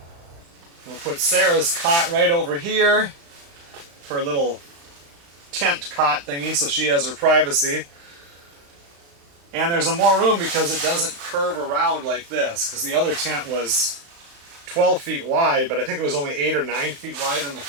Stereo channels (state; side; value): late; left; 35 ms